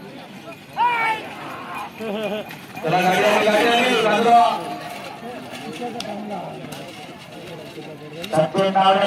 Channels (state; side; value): identical; both; correlation 1.00